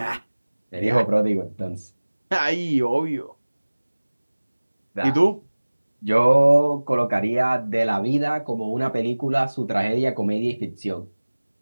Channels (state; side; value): inverted; both; correlation -1.00